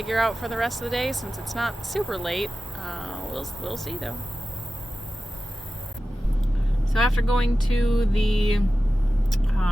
out for the rest of the day since it's not super late. We'll see though. So after going to the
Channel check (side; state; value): both; normal; correlation 0.94